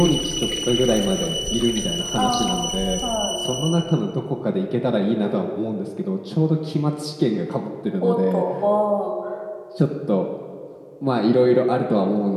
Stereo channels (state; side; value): identical; both; correlation 1.00